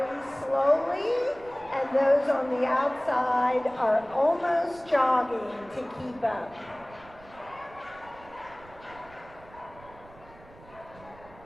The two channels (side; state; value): right; noise; rumble, 22 dB below the sound